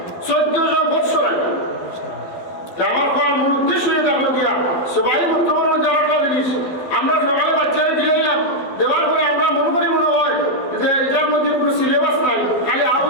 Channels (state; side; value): late; right; 12 ms